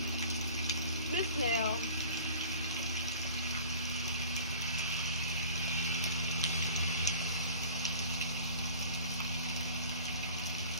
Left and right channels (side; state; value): both; inverted; correlation -0.42